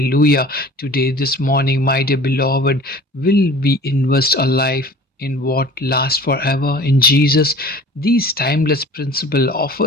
Today, this morning, my dear beloved, will we invest our life in what lasts forever in Jesus? These timeless principle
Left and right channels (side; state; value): both; normal; correlation 0.44